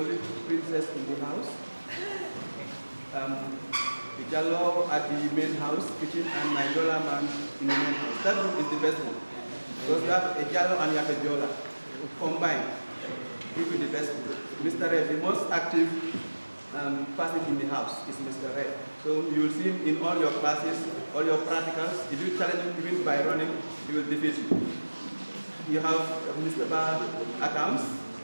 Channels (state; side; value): inverted; both; correlation -1.00